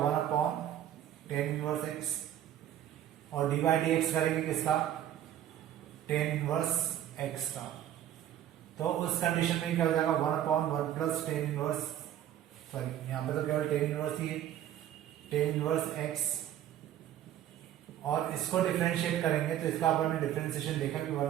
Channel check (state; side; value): quieter; left; 11.5 dB